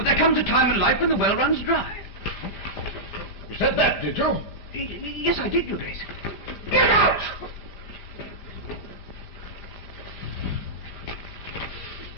there comes a time in life when the well runs dry. You said that, did you? Yes, I did, Your Grace. Get out!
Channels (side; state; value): right; late; 5.0 ms